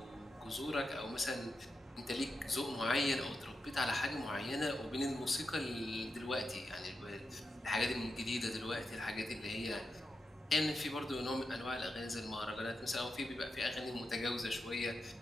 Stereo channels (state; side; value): normal; both; correlation 0.88